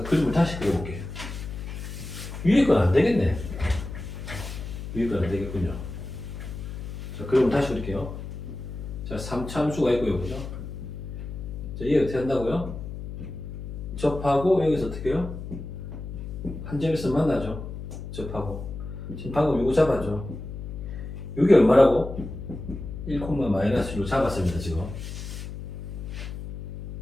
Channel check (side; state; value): left; noise; hum, 8 dB below the sound